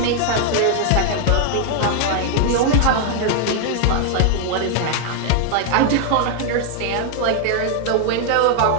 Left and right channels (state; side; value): different; both; correlation 0.00